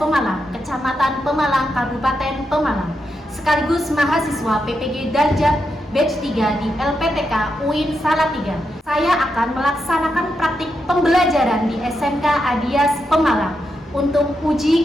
Kecamatan Pemalang, Kabupaten Pemalang, sekaligus mahasiswa PPG Darjat Batch 3 di LPTK UIN Salatiga. Saya akan melaksanakan praktik pembelajaran di SMK Adias Pemalang untuk uji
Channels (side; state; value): both; normal; correlation 0.84